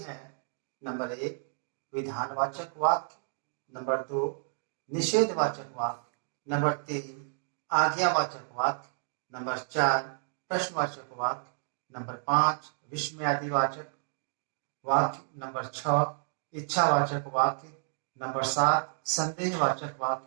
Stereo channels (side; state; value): left; silent; digital silence